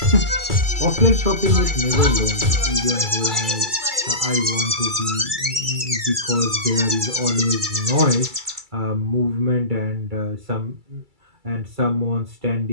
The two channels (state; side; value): late; left; 2.3 ms